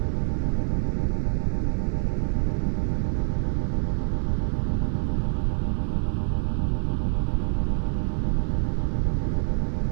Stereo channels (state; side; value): silent; left; 61 dB below the other